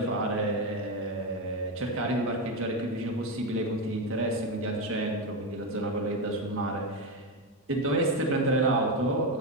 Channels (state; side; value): normal; both; correlation 0.11